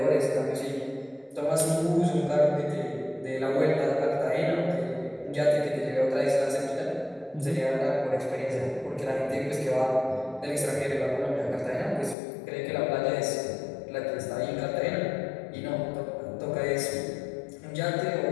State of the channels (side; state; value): right; drops out; at 12.2 s